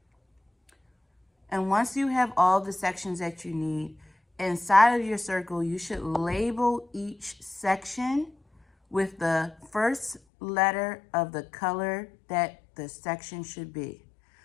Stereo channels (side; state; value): right; drops out; at 10.2 s